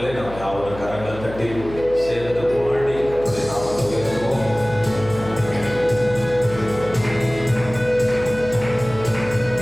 நாம் யாவரும் கரங்கள் தட்டி சேர்ந்து பாடி கர்த்தருடைய நாமத்தை உயர்த்துவோம்.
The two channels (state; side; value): noise; left; hum, 13 dB below the sound